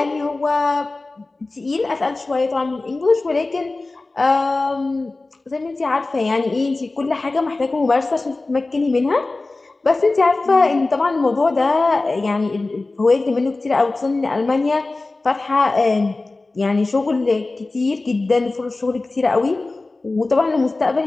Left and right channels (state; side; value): quieter; right; 3.3 dB